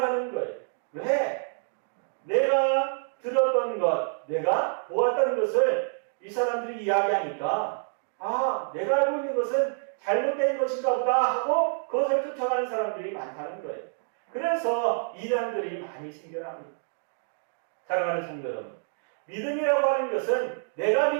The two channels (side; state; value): left; silent; digital silence